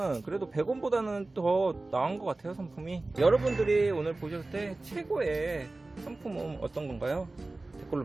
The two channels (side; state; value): left; quieter; 3.1 dB